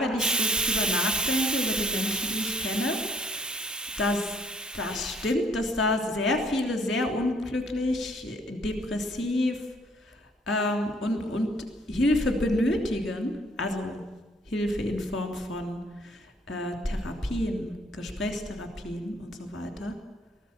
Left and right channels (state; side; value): normal; both; correlation 0.62